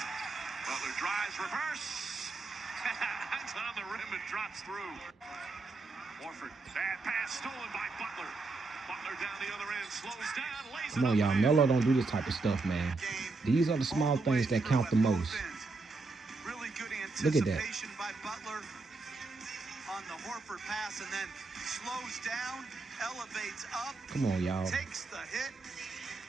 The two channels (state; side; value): quieter; left; 3.7 dB